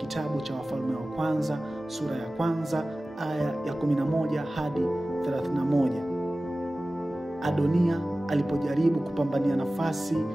cha Wafalme wa Kwanza sura ya 1 aya ya 11 hadi 31. Adonia alipojaribu kupambania nafasi,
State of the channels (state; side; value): normal; both; correlation 0.96